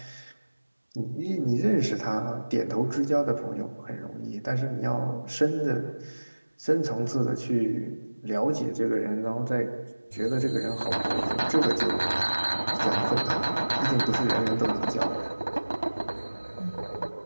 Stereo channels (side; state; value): both; inverted; correlation -1.00